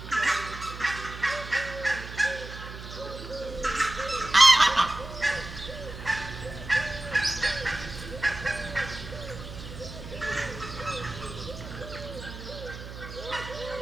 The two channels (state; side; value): noise; right; hum, 11 dB below the sound